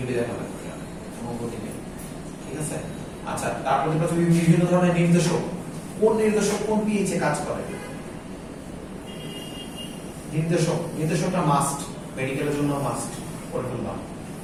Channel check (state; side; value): identical; both; correlation 1.00